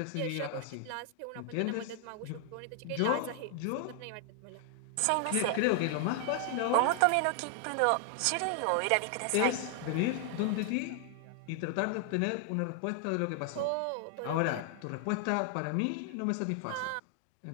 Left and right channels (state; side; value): different; both; correlation 0.00